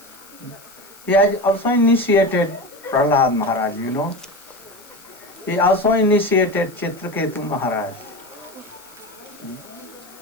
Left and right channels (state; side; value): noise; left; hiss, 23 dB below the sound